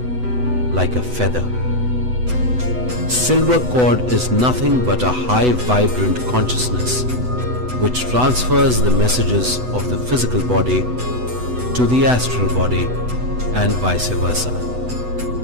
like a feather. Silver cord is nothing but a high vibrant consciousness which transfers the messages of the physical body to the astral body and vice versa.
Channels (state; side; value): late; left; 8.0 ms